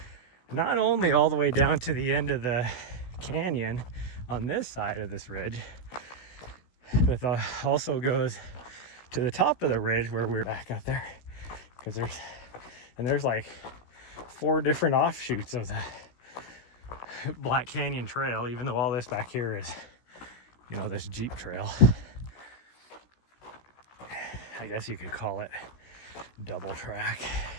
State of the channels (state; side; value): late; right; 16 ms